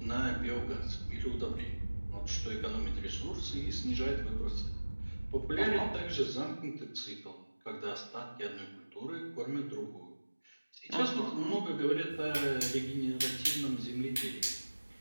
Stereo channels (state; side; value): inverted; both; correlation -1.00